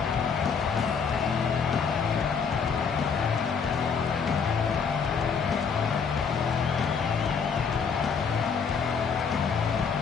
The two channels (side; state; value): right; quieter; 6.0 dB